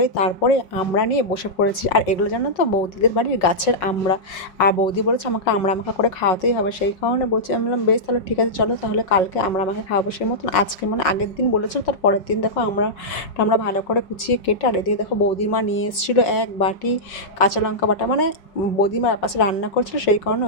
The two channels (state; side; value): late; right; 5.5 ms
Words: তারপরে আমরা নিয়ে বসে পড়েছি। আর এগুলো জানো তো বৌদিদের বাড়ির গাছের আমড়া। আর বৌদি বলেছে আমাকে আমড়া মাখা করে খাওয়াতেই হবে, সেই কারণে বলছি। আমি বললাম বেশ তাহলে ঠিক আছে, চলো তাহলে কালকে আমড়া মাখা খাওয়াবো। সেই মতন আজকে মানে আগের দিন বলেছিল, তার পরের দিন দেখো আমরা ভালো করে কুচিয়ে কেটে, আর এদিকে দেখো বৌদির মা নিয়ে এসেছিলো এক বাটি কাঁচা লঙ্কা বাটা। মানে বৌদিমা পাশে রান্না করছিল, সেই কারণে